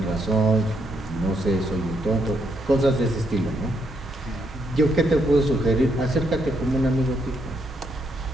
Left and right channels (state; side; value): normal; both; correlation 0.76